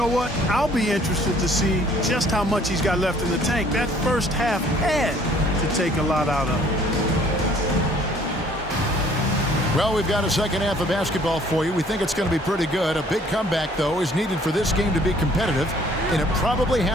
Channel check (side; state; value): both; normal; correlation 0.58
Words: what? I'll be interested to see just how much he's got left in the tank. That first half had to take a lot out of him. Well, we've got a second half of basketball for you. We think it's going to be pretty good. A big comeback, though, is needed for this game to be competitive, and it probably